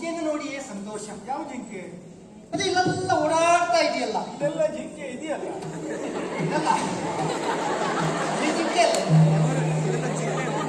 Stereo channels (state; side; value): identical; both; correlation 1.00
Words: ನೋಡಿಯೇ ಸಂತೋಷ ಯಾವ ಜಿಂಕೆ ಅದು ಇಲ್ಲೆಲ್ಲ ಓಡಾಡ್ತಾ ಇದೆಯಲ್ಲ ಇದೆಲ್ಲ ಜಿಂಕೆ ಇದೆಯಲ್ಲ ಇದಲ್ಲ ಈ ಜಿಂಕೆ ಅಲ್ಲ